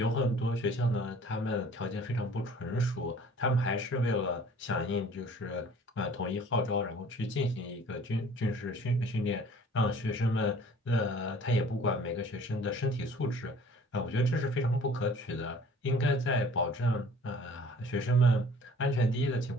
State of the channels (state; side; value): normal; both; correlation 0.51